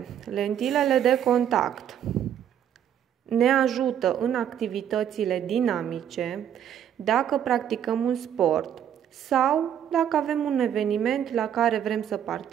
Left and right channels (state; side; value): quieter; left; 9.6 dB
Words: lentilele de contact ne ajută în activitățile dinamice, dacă practicăm un sport sau dacă avem un eveniment la care vrem să